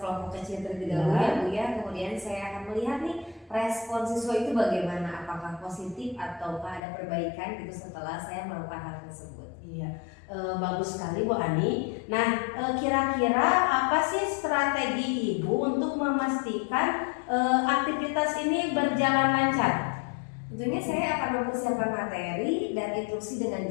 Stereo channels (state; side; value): drops out; right; at 6.8 s